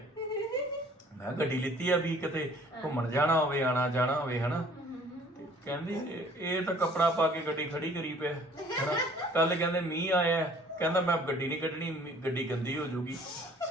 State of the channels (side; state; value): both; normal; correlation 0.55